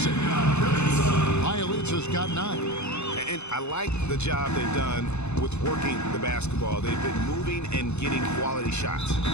it. Bjelica's got 9. And I like the job they've done with working the basketball. They've been moving and getting quality shots.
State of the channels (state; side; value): late; right; 0.81 ms